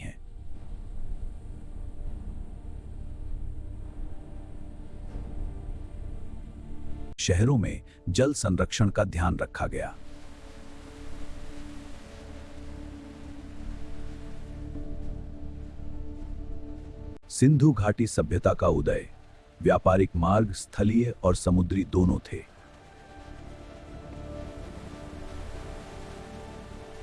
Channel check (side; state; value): both; identical; correlation 1.00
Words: शहरों में जल संरक्षण का ध्यान रखा गया। सिंधु घाटी सभ्यता का उदय। व्यापारिक मार्ग स्थलीय और समुद्री दोनों थे।